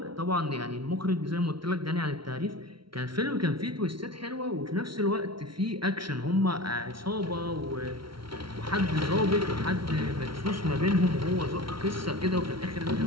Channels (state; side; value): late; left; 0.74 ms